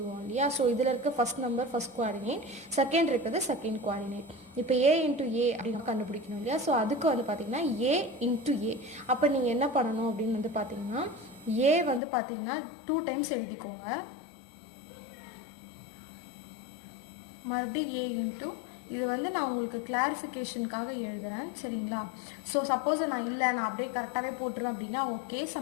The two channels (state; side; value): drops out; right; at 12.0 s